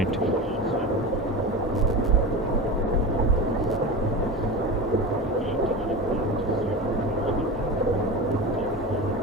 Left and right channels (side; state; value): both; normal; correlation 0.27